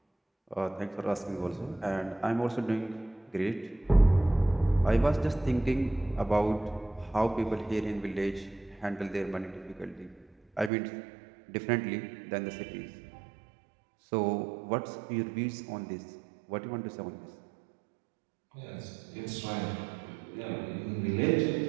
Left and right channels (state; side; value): drops out; left; at 10.7 s